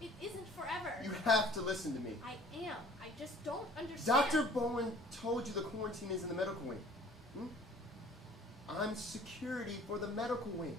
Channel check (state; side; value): normal; both; correlation 0.51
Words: isn't forever. You have to listen to me. I am. I just don't understand. Dr. Bowen told you the quarantine is in the medical wing. I'm security for the medical wing.